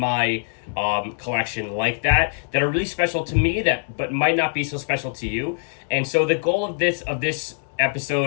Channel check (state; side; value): silent; right; 63 dB below the other